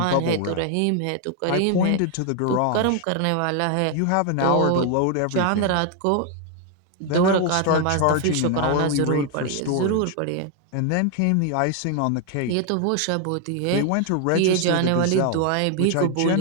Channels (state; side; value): different; both; correlation 0.01